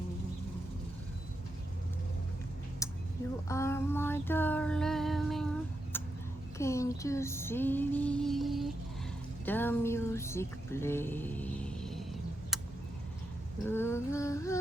You are my darling, can't you see the music play?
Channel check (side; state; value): both; normal; correlation 0.84